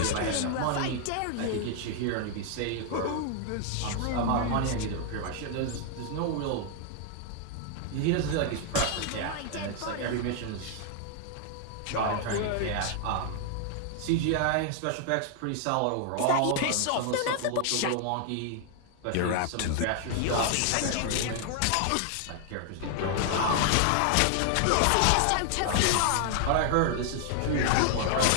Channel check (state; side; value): different; both; correlation 0.00